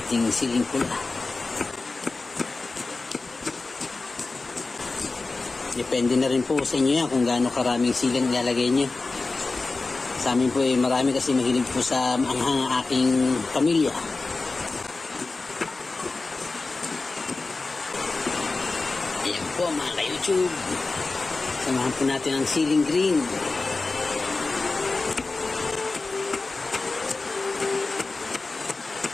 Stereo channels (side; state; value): right; quieter; 3.6 dB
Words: siling pula. Depende na rin po sa inyo yan kung gaano karaming siling ilalagay nyo. Sa amin po marami kasi mahilig po sa maanghang ang aking pamilya. Ayan po mga ka-YouTube. Samahan po natin ang siling green.